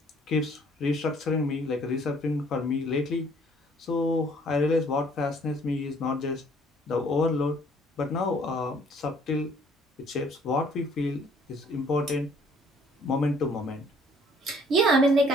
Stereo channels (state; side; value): normal; both; correlation 0.59